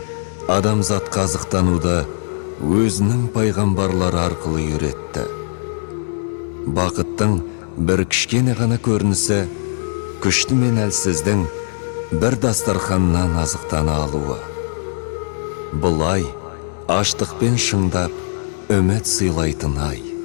адамзат қазықтануды өзінің пайғамбарлары арқылы үйретті. Бақыттың бір кішкене ғана көрінісі күшті мен әлсіздің бір дастарханнан азықтана алуы. Бұлай аштықпен шыңдап үміт сыйлайтын ай.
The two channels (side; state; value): right; silent; digital silence